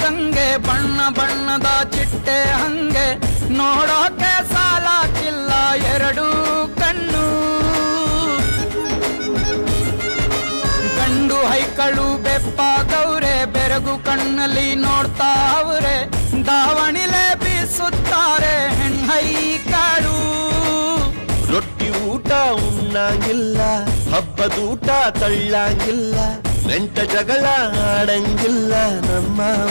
ಗಂಗೆ ಬಣ್ಣ ಬಣ್ಣದ ಚಿಟ್ಟೆ ಹಂಗೆ ನೋಡೋಕೆ ಸಾಲಾಕಿಲ್ಲ ಎರಡು ಕಣ್ಣು ಗಂಡು ಹೈಕಳು ಬೆಪ್ಪಾಗವ್ರೆ ಬೆರಗು ಕಣ್ಣಲ್ಲಿ ನೋಡ್ತಾ ಅವ್ರೆ ದಾವಣಿಲೆ ಬೀಸುತ್ತಾರೆ ಹೆಣ್ಹೈಕಳು ರೊಟ್ಟಿ ಊಟ ಉಣ್ಣಂಗಿಲ್ಲ ಹಬ್ಬದೂಟ ತಳ್ಳಂಗಿಲ್ಲ ನೆಂಟ ಜಗಳ ಆಡಂಗಿಲ್ಲ ನಮ್ಮ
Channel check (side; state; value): both; inverted; correlation -1.00